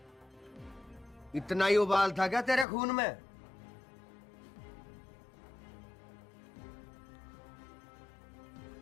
इतना ही उबाल था क्या तेरे खून में?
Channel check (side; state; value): right; drops out; at 2.7 s